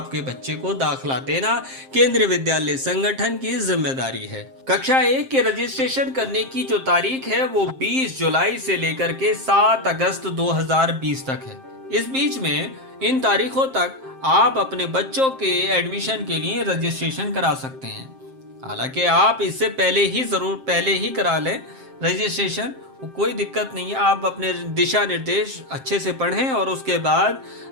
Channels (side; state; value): left; late; 7.6 ms